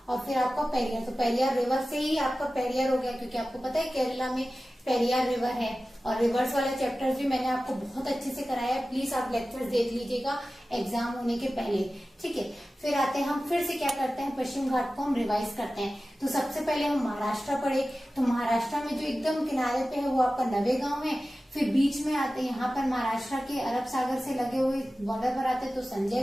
और फिर आपका पेरियार। तो पेरियार रिवर से ही आपका पेरियार हो गया, क्योंकि आपको पता है केरला में पेरियार रिवर है। और रिवर्स वाला चैप्टर्स भी मैंने आपको बहुत अच्छे से कराया है, प्लीज आप लेक्चर्स देख लीजिएगा एग्जाम होने के पहले। ठीक है, फिर आते हैं हम, फिर से क्या करते हैं, पश्चिम घाट को हम रिवाइज करते हैं। तो सबसे पहले हम महाराष्ट्र पढ़े, तो महाराष्ट्र में जो एकदम किनारे पे है वो आपका नवेगांव है। फिर बीच में आते हैं यहाँ पर महाराष्ट्र के अरब सागर से लगे हुए बॉर्डर पर आते हैं, तो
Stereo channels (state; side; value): normal; both; correlation 0.95